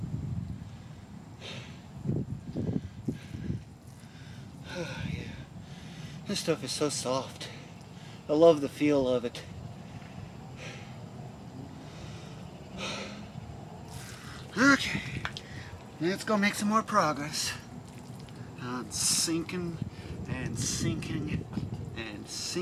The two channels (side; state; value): both; identical; correlation 1.00